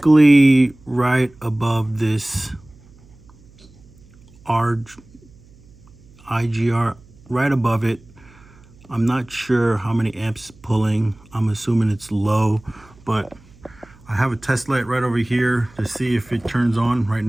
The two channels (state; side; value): noise; right; hum, 26 dB below the sound